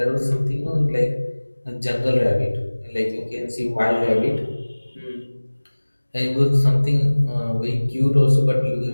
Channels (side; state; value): both; inverted; correlation -1.00